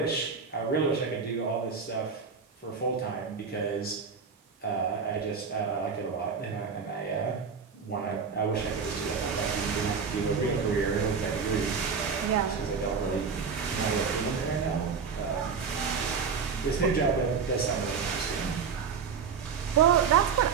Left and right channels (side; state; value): left; quieter; 5.9 dB